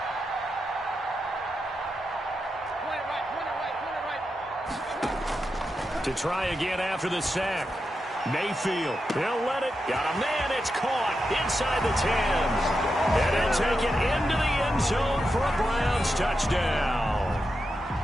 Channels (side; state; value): both; normal; correlation 0.87